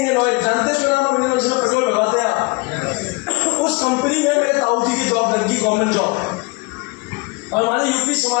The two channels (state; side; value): quieter; right; 26.7 dB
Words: ऑयल, जानते हैं नाम है, जिसमें पेट्रोल भरवाते हैं। उस कंपनी में मेरे ताऊजी की जॉब लगी, गवर्नमेंट जॉब। और हमारे यूपी